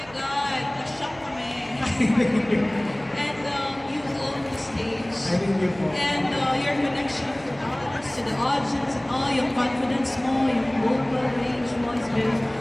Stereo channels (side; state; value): right; noise; hum, 23 dB below the sound